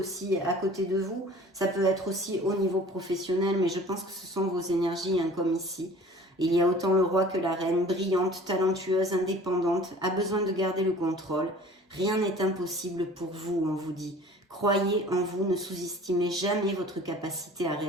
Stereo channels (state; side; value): normal; both; correlation 0.46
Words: à côté de vous. Ça peut être aussi au niveau professionnel, mais je pense que ce sont vos énergies, comme ici. Il y a autant le roi que la reine, brillante, talentueuse, indépendante, a besoin de garder le contrôle. Rien n'est impossible pour vous, on vous dit. Croyez en vous, ne sous-estimez jamais votre capacité à